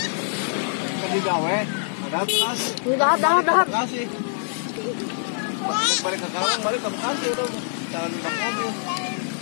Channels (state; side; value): silent; right; 57 dB below the other